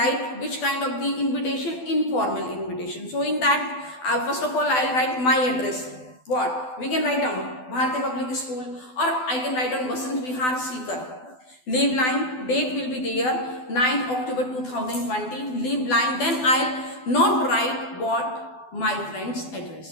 which kind of the invitation? Informal invitation. So in that, first of all, I'll write my address. What? We can write down Bharati Public School, or I can write down Vasant Vihar, Sikar. Leave line, date will be there, 9th October 2020. Leave line, then I'll not write what? My friend's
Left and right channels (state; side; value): late; right; 12 ms